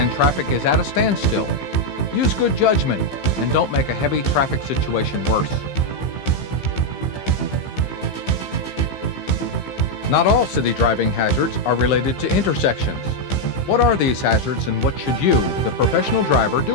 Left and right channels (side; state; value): right; late; 15 ms